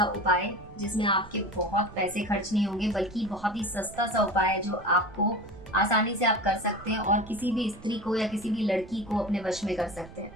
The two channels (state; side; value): noise; right; rumble, 19 dB below the sound